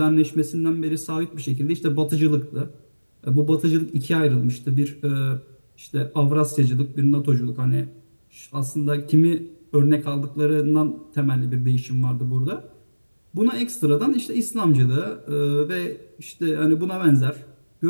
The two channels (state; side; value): inverted; both; correlation -1.00